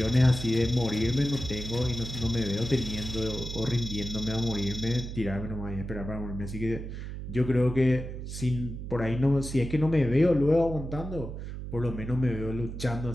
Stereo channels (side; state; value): right; noise; hum, 8 dB below the sound